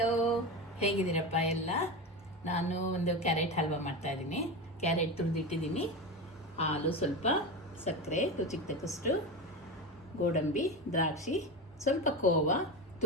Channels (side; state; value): both; normal; correlation 0.22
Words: ಹೇಗಿದ್ದೀರಪ್ಪ ಎಲ್ಲ? ನಾನು ಒಂದು ಕ್ಯಾರೆಟ್ ಹಲ್ವಾ ಮಾಡ್ತಾಯಿದ್ದೀನಿ. ಕ್ಯಾರೆಟ್ ತುರಿದಿಟ್ಟಿದ್ದೀನಿ, ಹಾಲು ಸ್ವಲ್ಪ, ಸಕ್ಕರೆ ರುಚಿಗೆ ತಕ್ಕಷ್ಟು, ಗೋಡಂಬಿ, ದ್ರಾಕ್ಷಿ, ಸ್ವಲ್ಪ ಕೋವಾ,